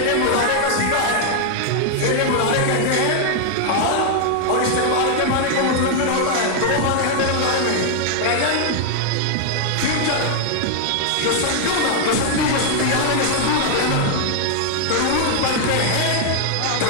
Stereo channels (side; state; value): both; different; correlation 0.00